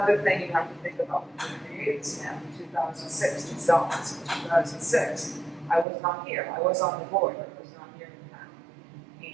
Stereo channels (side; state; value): left; drops out; at 5.9 s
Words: thing you have to think about. When we created this map in 2006, the zones in 2006, I was not here. I was on the board, but I was not here in